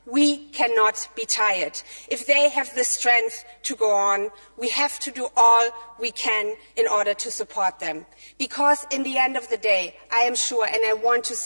we cannot be tired. If they have the strength to go on, we have to do all we can in order to support them. Because in the end of the day, I am sure, and I want to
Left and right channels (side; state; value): both; inverted; correlation -1.00